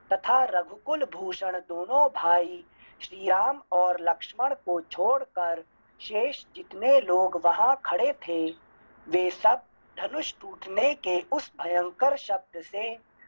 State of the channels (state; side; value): inverted; both; correlation -1.00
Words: तथा रघुकुल भूषण दोनों भाई श्री राम और लक्ष्मण को छोड़कर शेष जितने लोग वहां खड़े थे, वे सब धनुष टूटने के उस भयंकर शब्द से